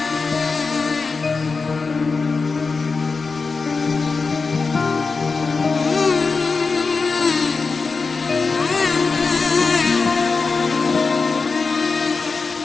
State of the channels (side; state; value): right; quieter; 4.5 dB